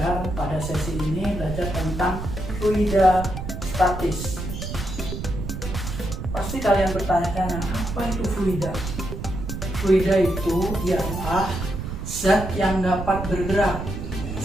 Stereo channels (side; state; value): right; noise; rumble, 6 dB below the sound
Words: pada sesi ini belajar tentang fluida statis. Pasti kalian bertanya-tanya, apa itu fluida? Fluida itu ialah zat yang dapat bergerak.